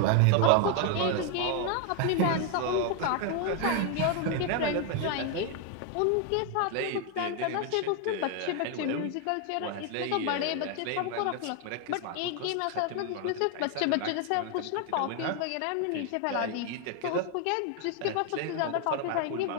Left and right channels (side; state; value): both; different; correlation 0.01